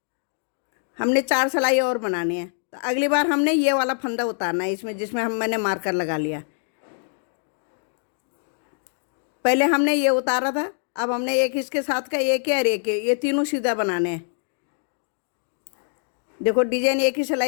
हमने 4 सिलाई और बनानी है। तो अगली बार हमने ये वाला फंदा उतारना है इसमें, जिसमें मैंने मार्कर लगा लिया। पहले हमने ये उतारा था, अब हमने एक इसके साथ का एक है और एक है, ये तीनों सीधा बनाने हैं। देखो डिजाइन एक ही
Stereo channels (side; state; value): right; silent; 62 dB below the other